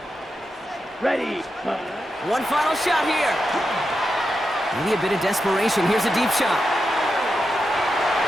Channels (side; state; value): both; normal; correlation 0.88